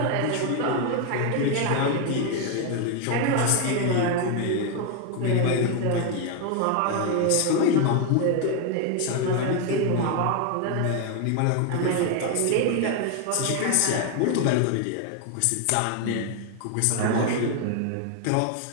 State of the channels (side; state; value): both; different; correlation 0.01